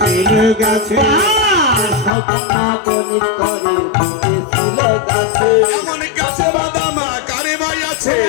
গাছে, স্বল্পন বনের তরে বেঁধেছিল গাছে। এমন গাছে বাঁধা মা কারে ভাই আছে,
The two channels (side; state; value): right; drops out; at 2.1 s